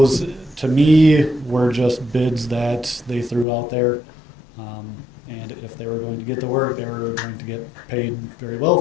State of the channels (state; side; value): drops out; right; at 3.5 s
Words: to me, were just bids that they threw out there. And if they were going to get the work, they were going to get paid very well